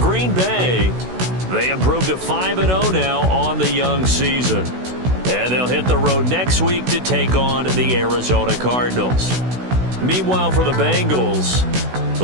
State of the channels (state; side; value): late; left; 16 ms